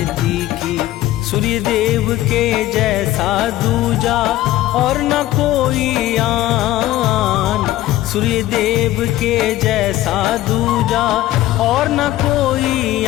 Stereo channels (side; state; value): right; quieter; 15.1 dB